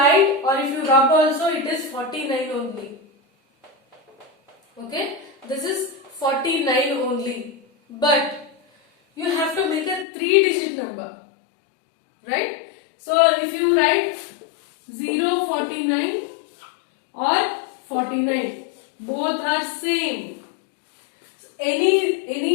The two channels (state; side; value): drops out; right; at 10.1 s